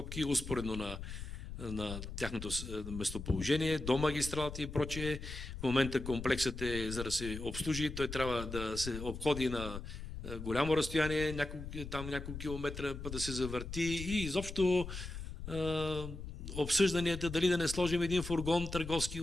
успоредно на тяхното местоположение, до магистралата и прочее. В момента комплексът е, за да се обслужи, той трябва да се обходи на голямо разстояние, няколко километра, да се завърти и изобщо обсъжданията дали да не сложим един фургон търговски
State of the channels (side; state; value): left; noise; rumble, 8 dB below the sound